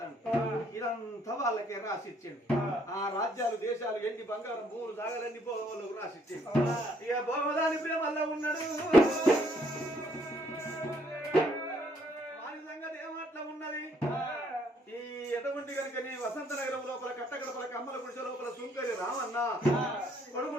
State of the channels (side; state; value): both; normal; correlation 0.67